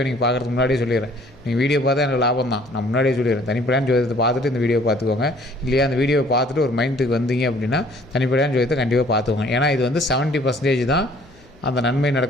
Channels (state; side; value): noise; left; hum, 28 dB below the sound